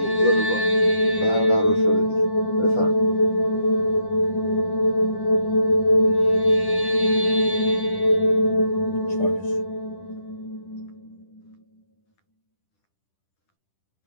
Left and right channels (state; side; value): late; right; 10 ms